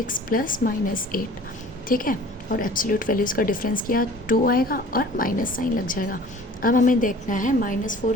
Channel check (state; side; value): normal; both; correlation 0.47